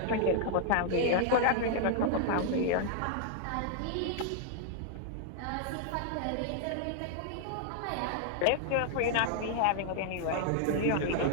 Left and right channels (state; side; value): different; both; correlation -0.01